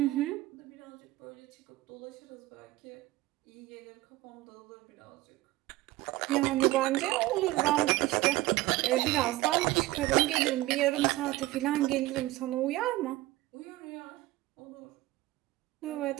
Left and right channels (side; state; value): left; quieter; 17.9 dB